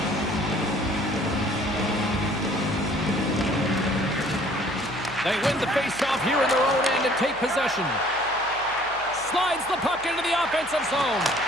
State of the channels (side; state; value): right; noise; hum, 21 dB below the sound